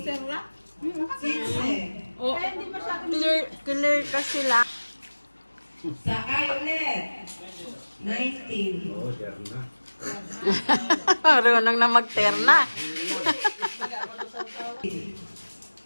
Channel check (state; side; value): inverted; both; correlation -1.00